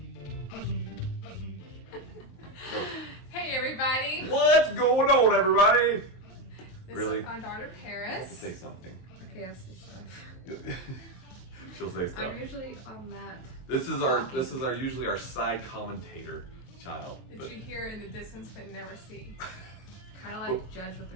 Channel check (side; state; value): right; late; 22 ms